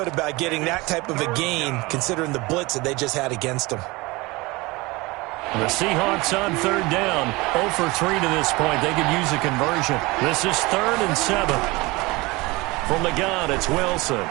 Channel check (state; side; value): quieter; left; 23.0 dB